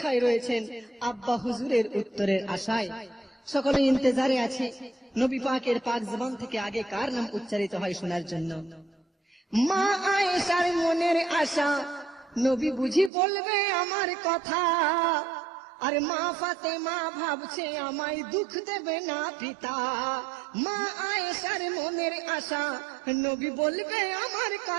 রয়েছেন আব্বা হুজুরের উত্তরের আশায়। সকলে ইন্তজারে আছে নবী পাকের পাক জবান থেকে আগে কার নাম উচ্চারিত হয় শোনার জন্য। মা আয়েশার মনের আশা, নবী বুঝি বলবে আমার কথা, আর মা ফাতেমা ভাবছে আমায় দুঃখ দেবে না পিতা। মা আয়েশার মনের আশা নবী বলবে আমার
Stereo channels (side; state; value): left; drops out; at 13.1 s